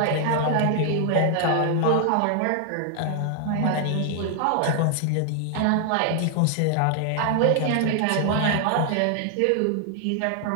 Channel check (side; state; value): both; different; correlation 0.00